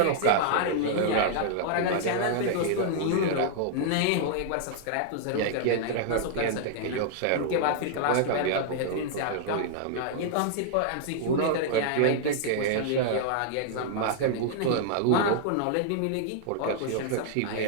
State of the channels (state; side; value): different; both; correlation -0.01